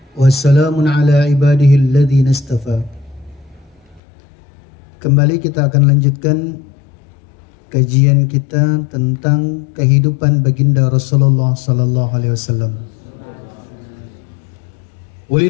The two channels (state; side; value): drops out; right; at 4.0 s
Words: wassalamun ala ibadihi alladzina istafa. Kembali kita akan lanjutkan kajian kita tentang kehidupan baginda Rasulullah sallallahu alaihi wasallam.